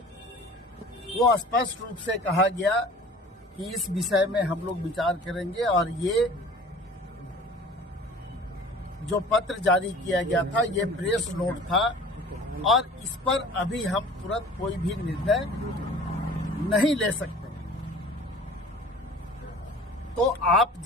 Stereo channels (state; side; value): normal; both; correlation 0.44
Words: वो स्पष्ट रूप से कहा गया कि इस विषय में हम लोग विचार करेंगे और ये जो पत्र जारी किया गया था ये प्रेस नोट था और इस पर अभी हम तुरंत कोई भी निर्णय नहीं ले सकते। तो आप